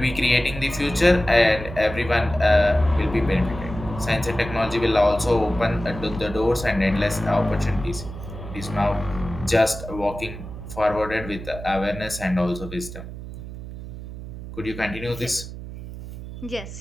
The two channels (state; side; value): noise; right; hum, 11 dB below the sound